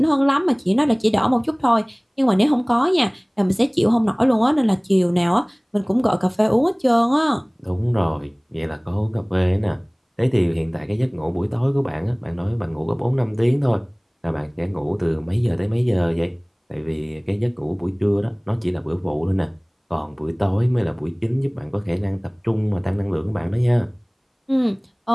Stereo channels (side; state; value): both; identical; correlation 1.00